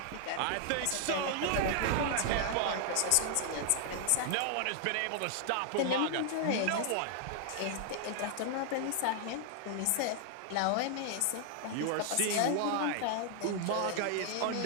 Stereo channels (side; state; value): both; different; correlation 0.00